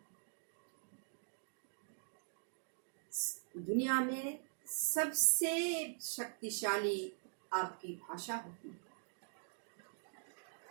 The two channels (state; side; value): silent; left; digital silence